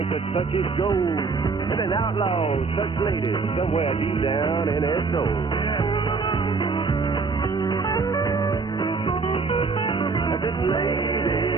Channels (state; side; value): quieter; left; 4.6 dB